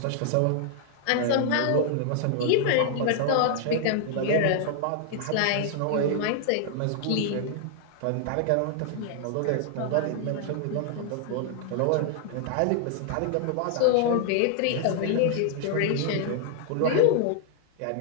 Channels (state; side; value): different; both; correlation 0.00